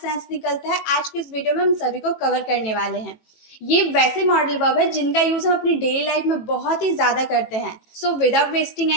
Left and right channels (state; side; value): late; right; 18 ms